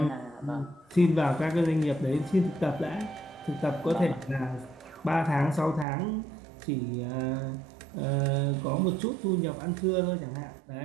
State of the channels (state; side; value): drops out; left; at 5.9 s